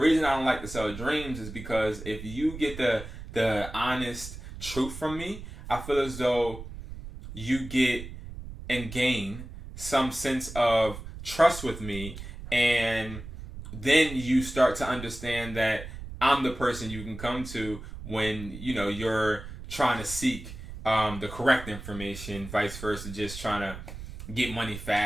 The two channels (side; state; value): right; noise; rumble, 11 dB below the sound